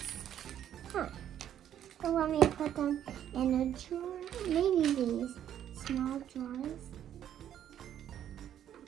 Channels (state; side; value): quieter; left; 10.4 dB